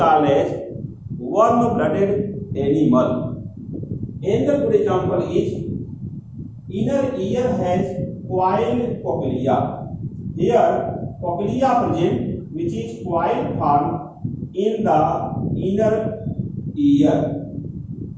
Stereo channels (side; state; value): both; identical; correlation 1.00